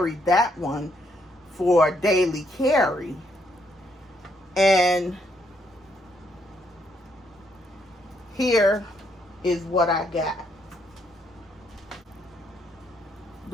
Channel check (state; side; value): normal; both; correlation 0.73